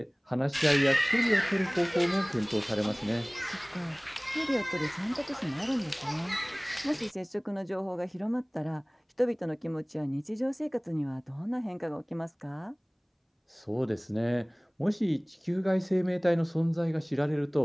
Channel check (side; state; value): both; identical; correlation 1.00